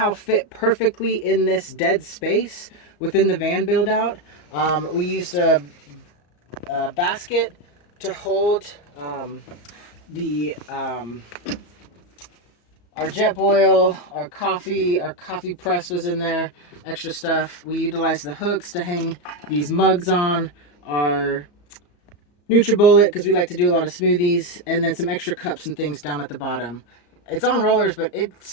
fit perfectly in this dead space within the van build out. We used a basket to hold the our jet boil, our coffee press was in there, extra stuff. We utilized the hooks to hang these mugs on, our NutriBullet, because we like to do a lot of smoothies, and then some extra cups and things down at the bottom. It's on rollers, but it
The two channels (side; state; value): right; late; 34 ms